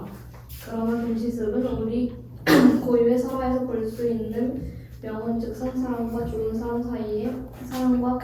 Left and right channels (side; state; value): both; identical; correlation 1.00